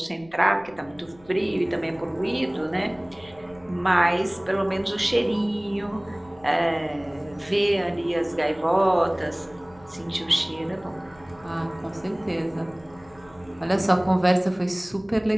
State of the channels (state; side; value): noise; left; rumble, 26 dB below the sound